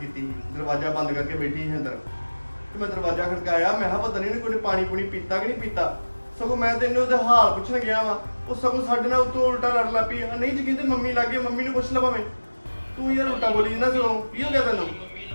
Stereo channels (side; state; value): both; inverted; correlation -1.00